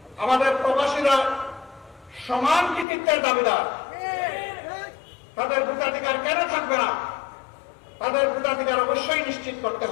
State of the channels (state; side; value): drops out; right; at 2.9 s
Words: আমাদের প্রবাসীরা সমান কৃতিত্বের দাবিদার। তাদের ভোটাধিকার কেন থাকবে না? তাদের ভোটাধিকার অবশ্যই নিশ্চিত করতে